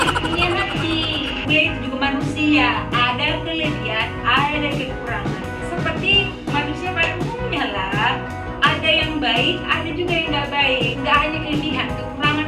Bule itu juga manusia, ada kelebihan, ada kekurangan. Seperti manusia pada umumnya lah, ada yang baik, ada juga yang nggak baik. Nggak hanya kelebihan, kekurangan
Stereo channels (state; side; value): identical; both; correlation 1.00